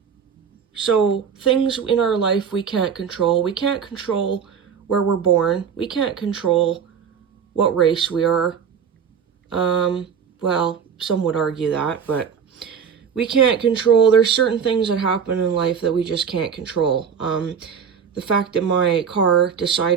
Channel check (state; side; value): quieter; left; 7.1 dB